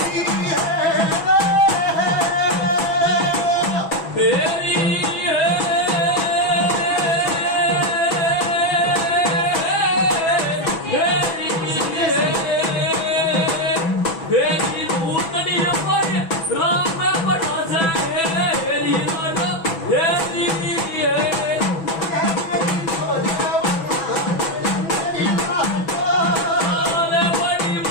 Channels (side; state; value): right; late; 6.1 ms